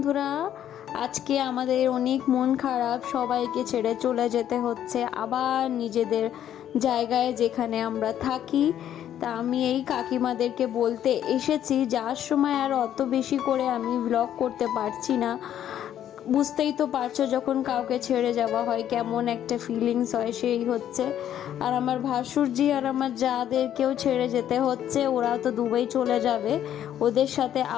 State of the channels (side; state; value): right; quieter; 10.7 dB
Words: আজকে আমাদের অনেক মন খারাপ, সবাইকে ছেড়ে চলে যেতে হচ্ছে আবার নিজেদের জায়গায় যেখানে আমরা থাকি। তা আমি এই কাকিমাদেরকে বলতে এসেছি, যার সময় আর অত বেশি করে আমি ব্লগ করতে পারছি না। বুঝতেই তো পারছো, যখন কাউকে ছেড়ে যাওয়া হয় কেমন একটা ফিলিংস হয়, সেই হচ্ছে। আর আমার ভাসুরজি আর আমার যাদেরকেও ছেড়ে যেতে হচ্ছে, ওরাও তো দুবাই চলে যাবে, ওদের সাথে